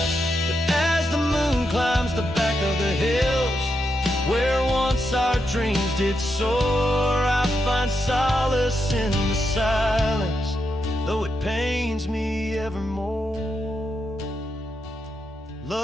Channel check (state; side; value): normal; both; correlation 0.84